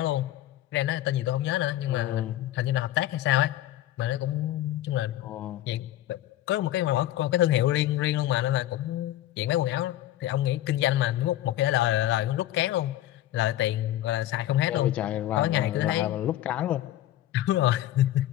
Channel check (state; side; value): quieter; right; 13.9 dB